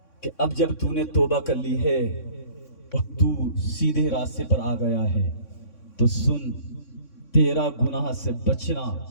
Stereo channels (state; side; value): late; right; 3.6 ms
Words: کہ اب جب تو نے توبہ کر لی ہے اور تو سیدھے راستے پر آ گیا ہے تو سن, تیرا گناہ سے بچنا,